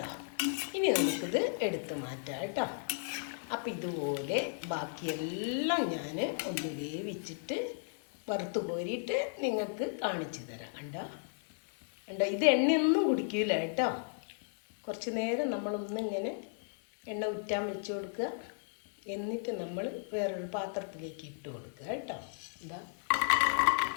ഇനി നമുക്കിത് എടുത്ത് മാറ്റാം കേട്ടോ. അപ്പം ഇതുപോലെ ബാക്കിയെല്ലാം ഞാൻ ഒന്ന് വേവിച്ചിട്ട് വറുത്ത് കോരിയിട്ട് നിങ്ങൾക്ക് കാണിച്ചു തരാം. കണ്ടോ, ഇത് എണ്ണയൊന്നും കുടിക്കില്ല കേട്ടോ. കുറച്ച് നേരം നമ്മളൊന്നിങ്ങനെ എണ്ണ ഉറ്റാൻ വെച്ച് കൊടുക്കുക. എന്നിട്ട് നമ്മൾ വേറൊരു പാത്രത്തിലേക്ക് ഇട്ട് കൊടുക്കുക കേട്ടോ. ഇതാ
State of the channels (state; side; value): silent; right; digital silence